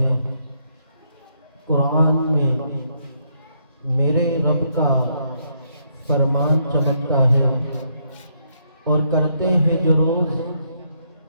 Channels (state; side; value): inverted; both; correlation -0.74